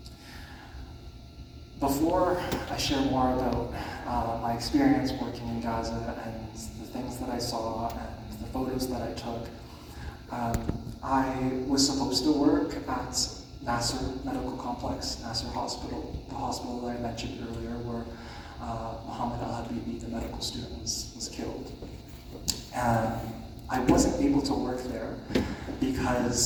Before I share more about my experience working in Gaza and the things that I saw and the photos that I took, I was supposed to work at Nasser Medical Complex, Nasser Hospital, the hospital that I mentioned earlier where Mohammed Al-Habibi, the medical student, was killed. I wasn't able to work there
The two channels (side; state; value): both; identical; correlation 1.00